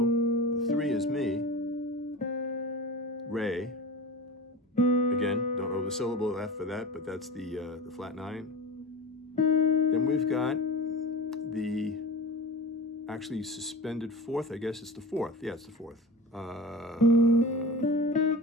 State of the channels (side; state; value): both; normal; correlation 0.31